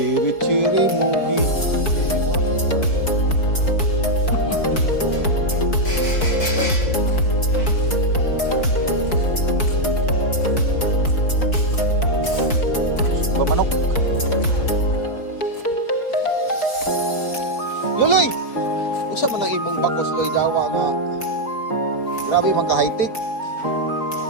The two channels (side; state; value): right; late; 4.6 ms